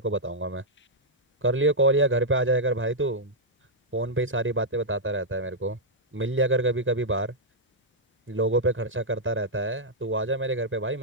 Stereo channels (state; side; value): normal; both; correlation -0.07